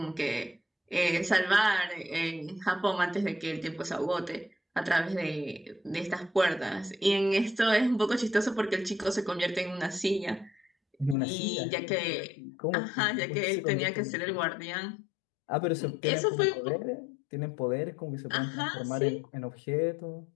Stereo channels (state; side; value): drops out; right; at 11.2 s